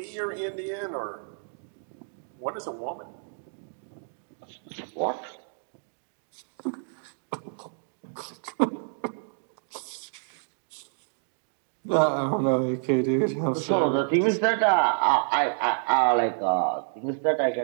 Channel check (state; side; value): silent; left; digital silence